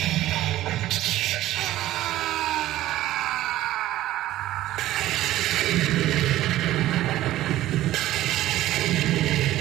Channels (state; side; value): quieter; left; 14.8 dB